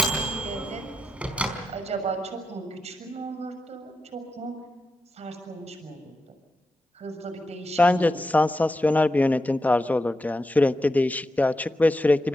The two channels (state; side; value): normal; both; correlation 0.88